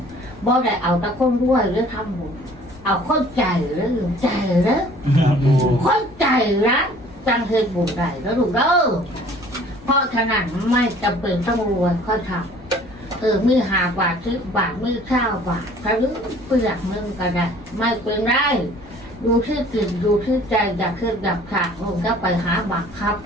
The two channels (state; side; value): noise; left; rumble, 22 dB below the sound